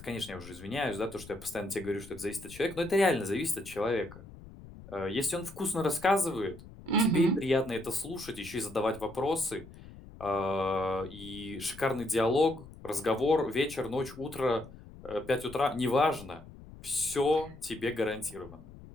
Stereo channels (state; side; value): noise; left; rumble, 17 dB below the sound